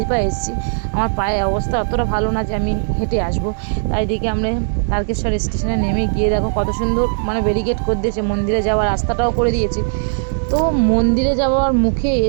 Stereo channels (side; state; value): left; silent; 67 dB below the other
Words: পায়ে এসেছি, আমার পায়ের অবস্থা অতটা ভালো না যে আমি হেঁটে আসবো। তাই দেখে আমরা তারকেশ্বর স্টেশনে নেমে গিয়ে দেখো কত সুন্দর মানে ব্যারিকেড করে দিয়েছে, মন্দিরে যাওয়ার রাস্তাটাও করে দিয়েছে। তো মন্দিরে যাওয়ার মুখে